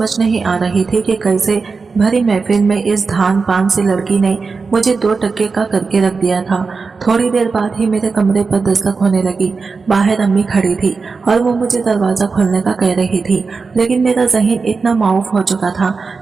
नहीं आ रही थी कि कैसे भरी महफिल में इस धान पान सी लड़की ने मुझे 2 टक्के का करके रख दिया था। थोड़ी देर बाद ही मेरे कमरे पर दस्तक होने लगी। बाहर अम्मी खड़ी थी और वो मुझे दरवाजा खोलने का कह रही थी, लेकिन मेरा ज़हन इतना माऊफ हो चुका था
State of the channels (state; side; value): quieter; left; 4.6 dB